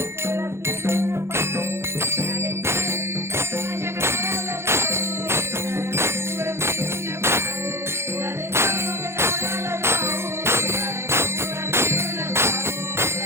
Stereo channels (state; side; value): late; left; 0.12 ms